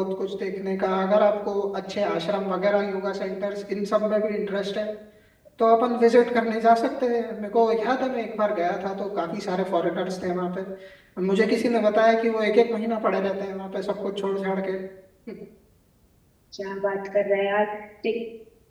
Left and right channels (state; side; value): identical; both; correlation 1.00